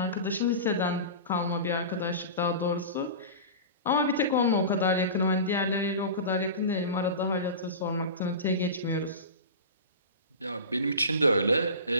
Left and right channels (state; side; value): inverted; both; correlation -0.31